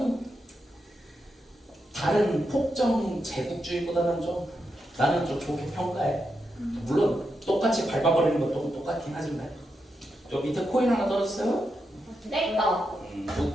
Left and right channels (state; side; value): normal; both; correlation 0.85